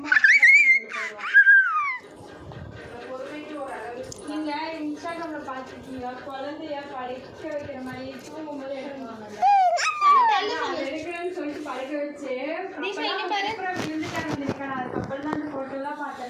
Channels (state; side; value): identical; both; correlation 1.00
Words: நீங்கள் இன்ஸ்டாகிராமில் பார்த்துருக்கீங்களா குழந்தைய படிக்க வைக்கிற மாதிரி தூங்கும்போது எடுக்கிறேன்னு சொல்லிட்டு படிக்க வச்சு விழுந்துட்டாங்க. அதுக்கப்புறம் தான் அந்த ஃபோட்டோலாம்